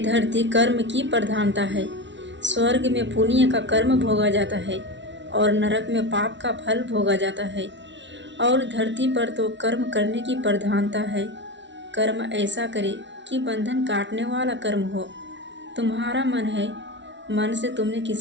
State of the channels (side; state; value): left; late; 0.53 ms